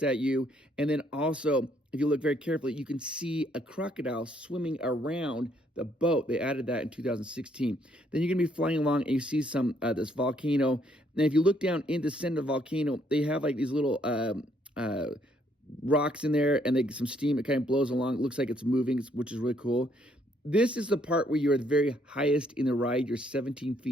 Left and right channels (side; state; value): both; normal; correlation 0.69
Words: at you. And then also, if you look very carefully, you can see a crocodile swimming around the boat. They added that in 2016. Then you're going to be flying along, and you see this volcano. And if you look down in the center of the volcano, they have these little rocks in there, and some steam. It kind of blows along. It looks like it's moving, which is really cool. This is the part where you're the very highest in the ride. You're 17